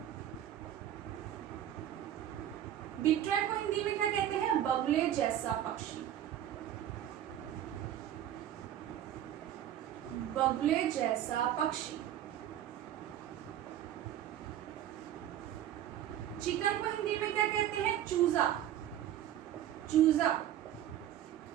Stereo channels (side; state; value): left; quieter; 11.4 dB